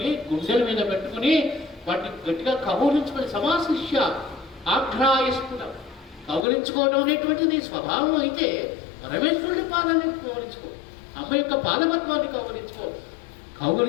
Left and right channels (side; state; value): right; drops out; at 6.5 s